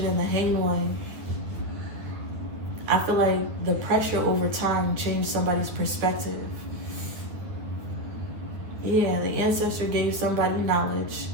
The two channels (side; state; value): left; late; 9.8 ms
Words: and the Hanged One, I feel like the pressure over time changed somebody's perspective. Yeah, the ancestor gave somebody knowledge,